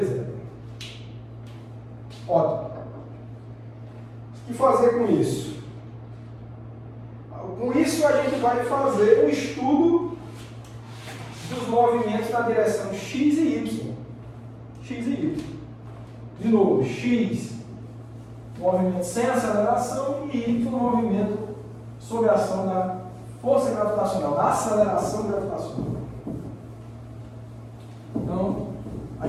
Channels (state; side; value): identical; both; correlation 1.00